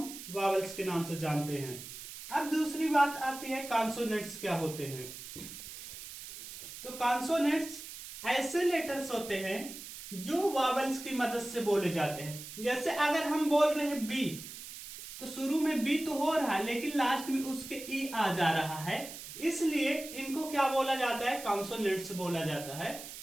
वावल्स के नाम से जानते हैं। अब दूसरी बात आती है कॉन्सोनेंट्स क्या होते हैं। तो कॉन्सोनेंट्स ऐसे लेटर्स होते हैं जो वावल्स की मदद से बोले जाते हैं। जैसे अगर हम बोल रहे हैं बी, तो शुरू में बी तो हो रहा है लेकिन लास्ट में उसके ई आ जा रहा है, इसलिए इनको क्या बोला जाता है? कॉन्सोनेंट्स बोला जाता है।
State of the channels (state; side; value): noise; right; hiss, 12 dB below the sound